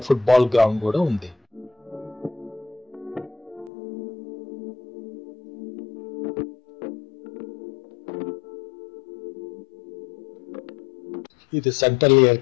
ఫుట్బాల్ గ్రౌండ్ కూడా ఉంది. ఇది సెంట్రల్ ఎయిర్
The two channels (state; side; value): drops out; right; at 3.7 s